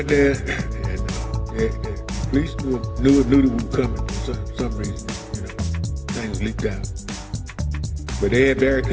there, and the police knew that we were coming for some reason. Things leaked out. But they had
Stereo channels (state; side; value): identical; both; correlation 1.00